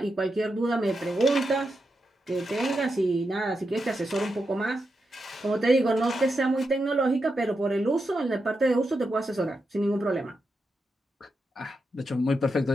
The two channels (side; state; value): both; normal; correlation 0.86